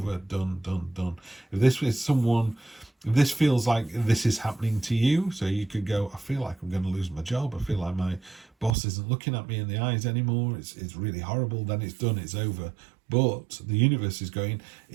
done. If this is someone, if this feels like this is happening to you, so you could go, I feel like I'm going to lose my job. I feel like my boss isn't looking at me in the eyes anymore. It's really horrible. Then it's done. It's over. But the universe is going,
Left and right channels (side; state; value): left; drops out; at 8.7 s